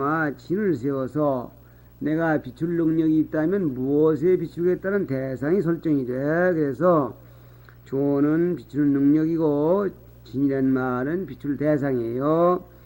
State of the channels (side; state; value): both; identical; correlation 1.00